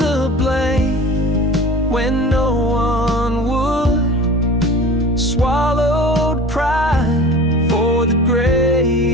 blame when no one would, swallowed pride for the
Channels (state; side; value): normal; both; correlation 0.39